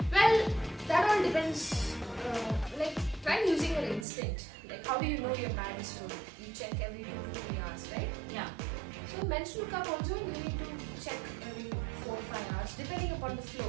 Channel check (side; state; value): left; drops out; at 4.0 s